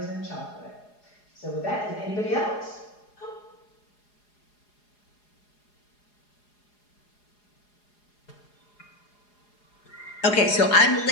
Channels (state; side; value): late; right; 4.8 ms